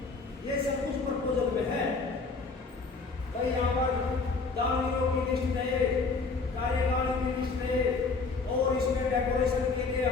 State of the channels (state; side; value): quieter; right; 4.2 dB